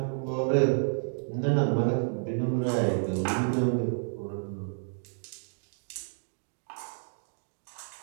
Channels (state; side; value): silent; left; digital silence